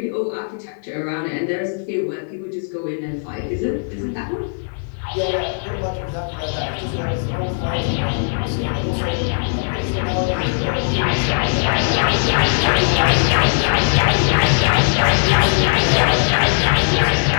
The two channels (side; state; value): right; silent; 58 dB below the other